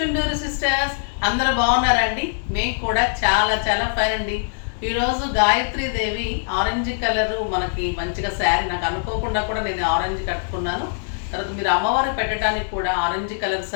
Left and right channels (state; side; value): silent; right; digital silence